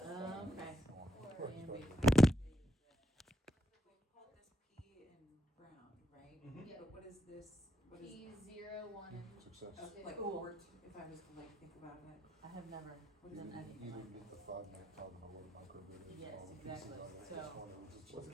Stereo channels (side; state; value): both; normal; correlation 0.80